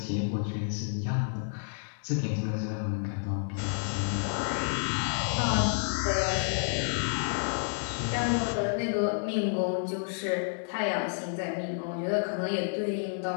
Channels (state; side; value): silent; right; digital silence